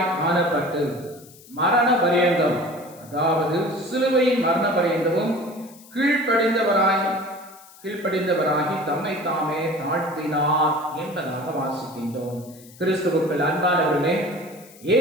காணப்பட்டு மரண பரியந்தம், அதாவது சிலுவையின் மரண பரியந்தமும் கீழ்ப்படிந்தவராகி தம்மை தாமே தாழ்த்தினார் என்பதாக வாசிக்கின்றோம். கிறிஸ்துவுக்குள் அன்பானவர்களே,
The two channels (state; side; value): noise; left; hiss, 23 dB below the sound